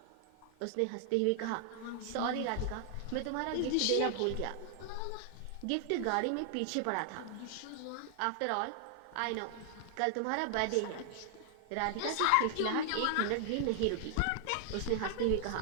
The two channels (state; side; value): different; both; correlation 0.00